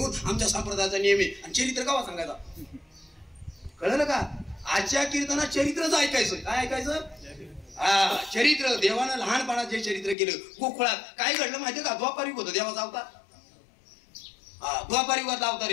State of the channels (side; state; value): right; drops out; at 10.2 s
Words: आमच्या संप्रदायाचा नियम आहे आणि चरित्र कावा सांगायचा कळलं का आजच्या कीर्तनात चरित्रच ऐकायचं काय ऐकायचं हा चरित्र देवानं लहानपणात जे चरित्र केलं गोकुळात काय घडलं माहितीये का द्वापार युग होतं देवाचा अवतार द्वापार युगातला अवतार